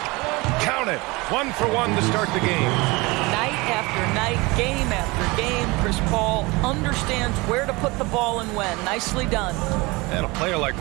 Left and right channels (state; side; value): quieter; left; 24.0 dB